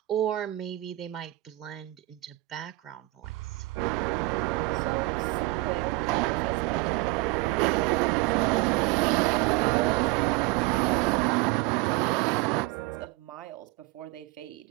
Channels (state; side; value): quieter; left; 19.7 dB